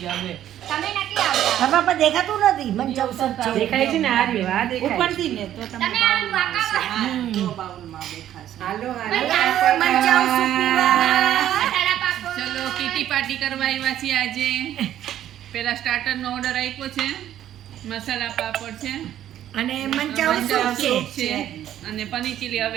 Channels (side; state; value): left; quieter; 11.7 dB